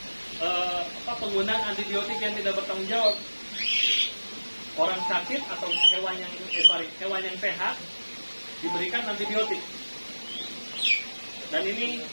penggunaan antibiotik yang tidak bertanggung jawab. Orang sakit atau hewan yang sehat diberikan antibiotik. Dan ini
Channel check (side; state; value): both; inverted; correlation -1.00